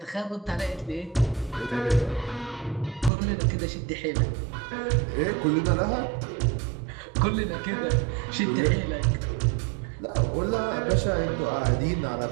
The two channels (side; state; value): left; drops out; at 3.1 s